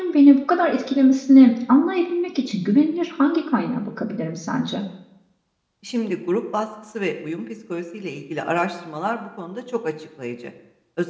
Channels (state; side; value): identical; both; correlation 1.00